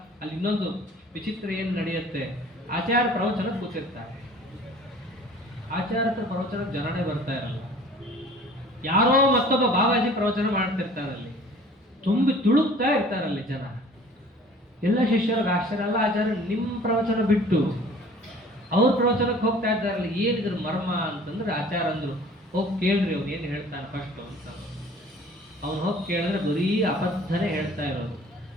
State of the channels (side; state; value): both; normal; correlation 0.49